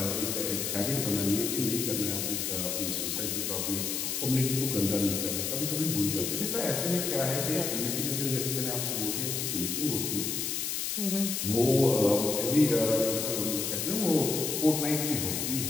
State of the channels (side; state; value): left; noise; hiss, 1 dB below the sound